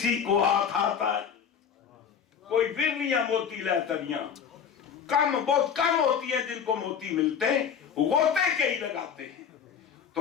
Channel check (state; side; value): quieter; right; 7.4 dB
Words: کو ہاتھ آتا ہے. کوئی ورلیاں موتی لے تریاں بہت کم ہوتی ہے جن کو موتی ملتے ہیں, غوطے کئی لگاتے ہیں.